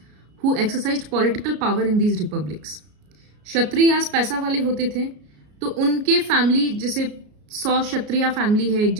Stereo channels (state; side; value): late; left; 33 ms